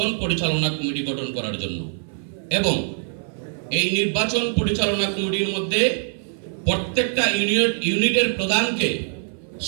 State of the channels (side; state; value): left; silent; 57 dB below the other